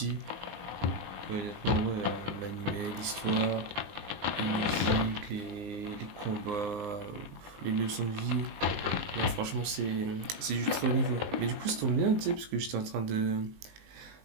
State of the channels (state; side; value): late; left; 19 ms